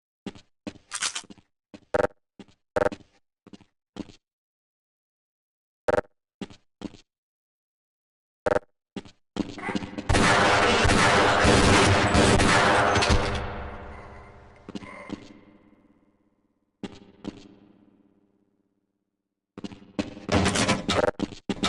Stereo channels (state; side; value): identical; both; correlation 1.00